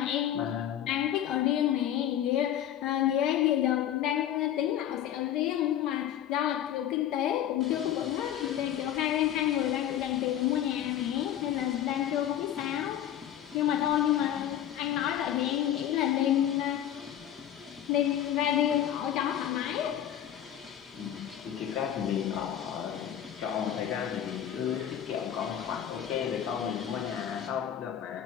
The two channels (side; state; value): right; quieter; 10.7 dB